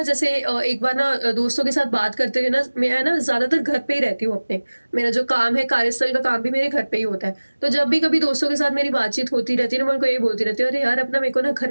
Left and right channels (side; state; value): both; inverted; correlation -1.00